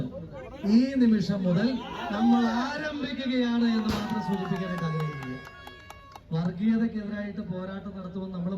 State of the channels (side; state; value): both; identical; correlation 1.00